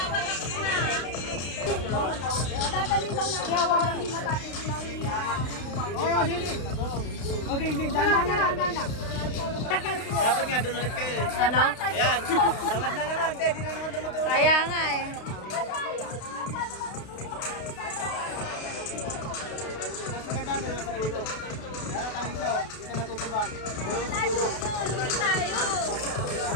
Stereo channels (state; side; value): late; right; 32 ms